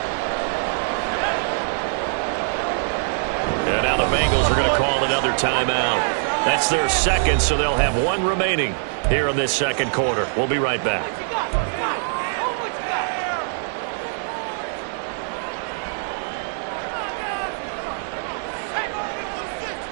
And now the Bengals are going to call another timeout. That's their second, so they'll have one remaining here in this second quarter. We'll be right back.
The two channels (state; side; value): silent; left; digital silence